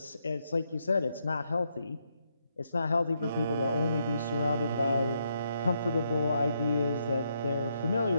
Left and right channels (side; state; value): both; inverted; correlation -0.78